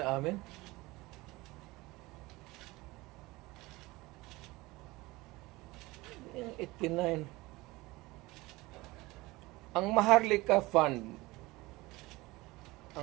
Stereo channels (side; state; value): left; quieter; 21.1 dB